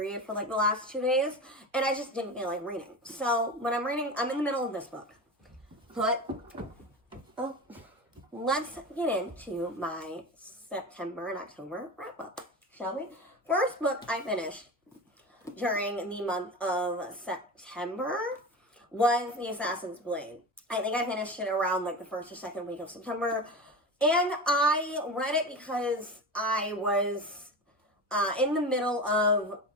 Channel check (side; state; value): both; normal; correlation 0.27